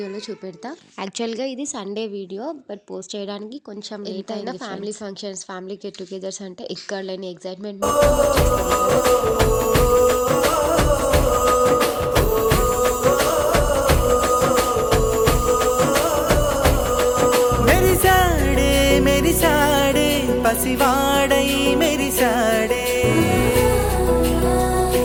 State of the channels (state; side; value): identical; both; correlation 1.00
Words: చూపెడతా. యాక్చువల్గా ఇది సండే వీడియో, బట్ పోస్ట్ చేయడానికి కొంచెం లేట్ అయినా family functions, family get togethers అంటే ఇక్కడ లేని ఎగ్జైట్మెంట్ మెరిసాడే పసివాడై మెరిసాడే